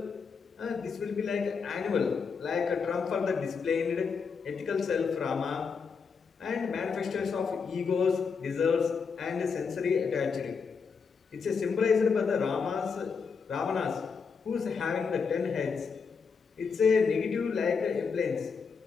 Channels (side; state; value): right; quieter; 5.5 dB